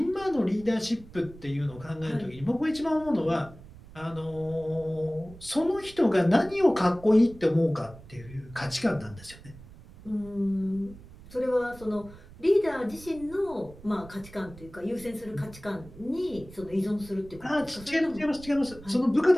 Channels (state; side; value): noise; right; rumble, 19 dB below the sound